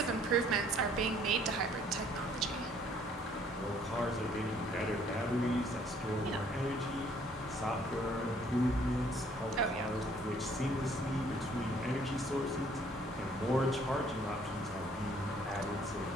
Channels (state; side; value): normal; both; correlation 0.61